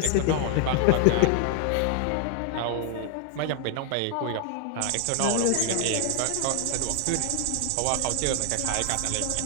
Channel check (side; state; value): both; different; correlation 0.00